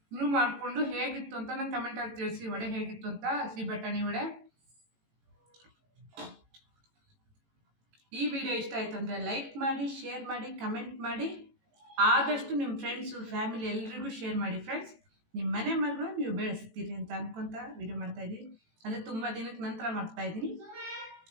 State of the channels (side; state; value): left; late; 18 ms